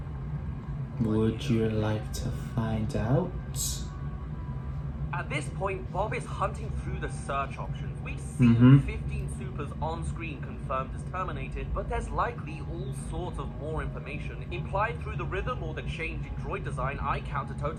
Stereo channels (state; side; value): identical; both; correlation 1.00